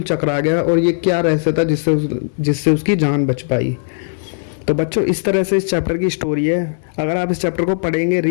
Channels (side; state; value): right; silent; digital silence